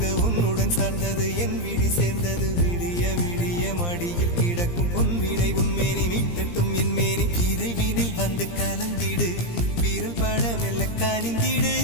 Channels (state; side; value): late; right; 17 ms